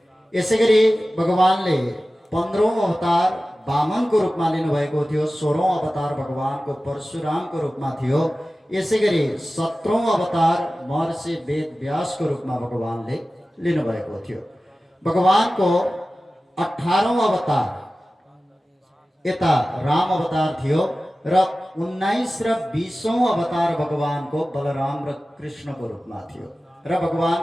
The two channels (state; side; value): normal; both; correlation 0.96